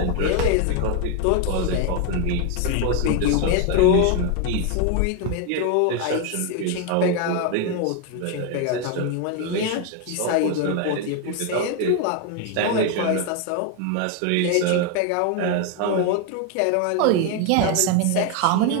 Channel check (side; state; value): both; different; correlation 0.01